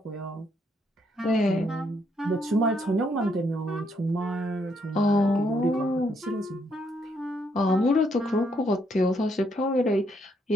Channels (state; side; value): normal; both; correlation 0.73